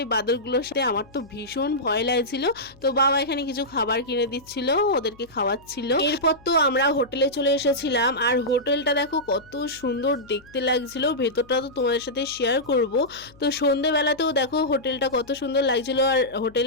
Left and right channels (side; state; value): left; noise; hum, 26 dB below the sound